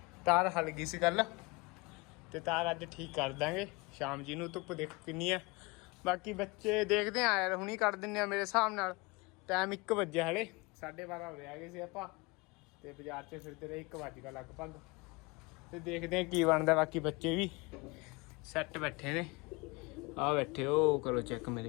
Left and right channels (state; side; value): quieter; right; 26.1 dB